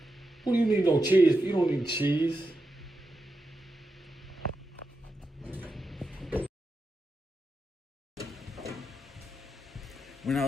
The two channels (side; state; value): both; normal; correlation 0.88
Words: What do you need no cheese? You don't need cheese. When I